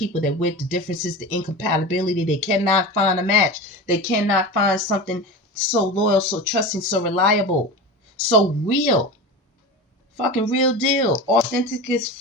they're with, the differences, the incompatibility. They cannot find a match. They cannot find something so loyal, so trusting, so reliable, so real. Fucking real deal. Authentic as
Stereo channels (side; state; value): both; normal; correlation 0.28